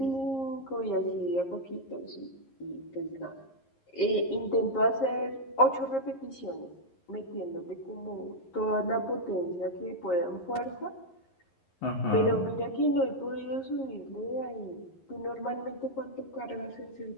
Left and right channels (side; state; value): right; late; 11 ms